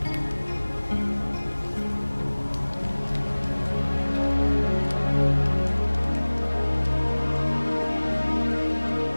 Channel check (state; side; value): inverted; both; correlation -1.00